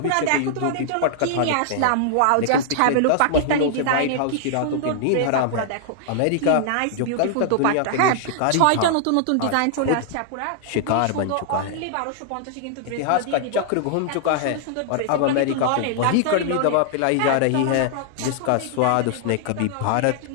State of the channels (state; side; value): different; both; correlation -0.01